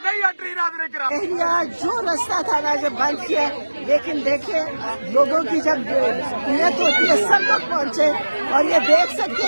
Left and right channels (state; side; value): inverted; both; correlation -1.00